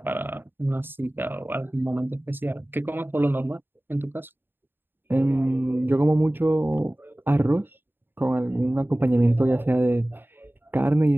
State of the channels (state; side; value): late; left; 0.098 ms